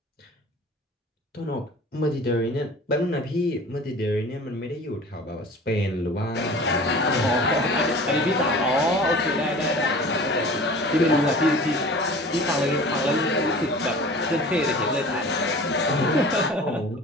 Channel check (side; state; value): both; normal; correlation 0.42